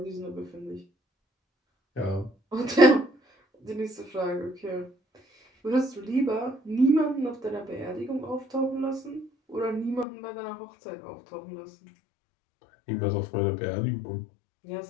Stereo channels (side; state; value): right; drops out; at 10.1 s